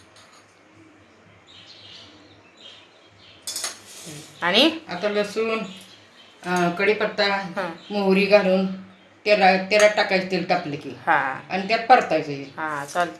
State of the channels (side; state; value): both; identical; correlation 1.00